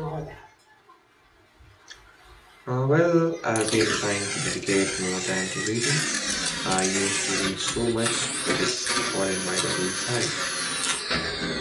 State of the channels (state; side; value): identical; both; correlation 1.00